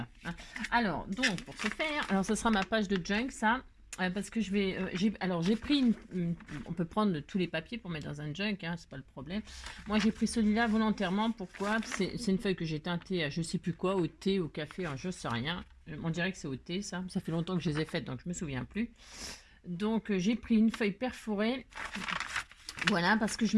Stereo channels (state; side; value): identical; both; correlation 1.00